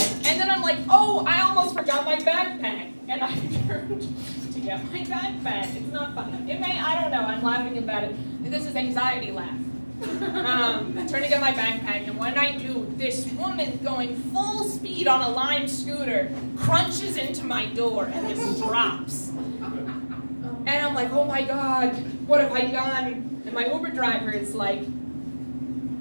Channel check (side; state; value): both; inverted; correlation -1.00